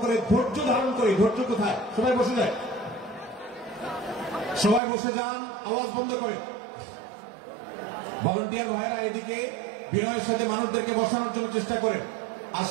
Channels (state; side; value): drops out; left; at 4.8 s